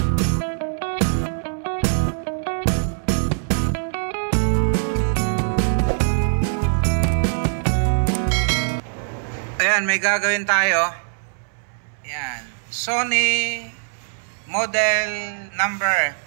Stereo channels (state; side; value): silent; left; 64 dB below the other